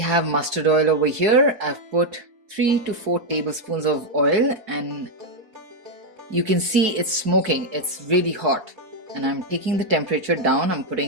mustard oil over here. I've put 3 to 4 tablespoons of oil and you can see it's smoking. It's really hot. And I'm taking the temperature down. I'm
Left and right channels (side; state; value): left; late; 4.6 ms